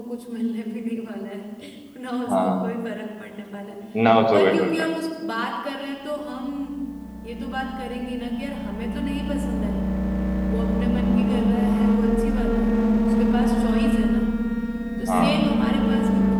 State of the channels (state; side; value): identical; both; correlation 1.00